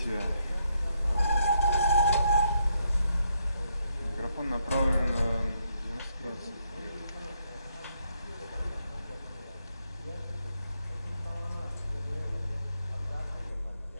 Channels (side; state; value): both; inverted; correlation -0.76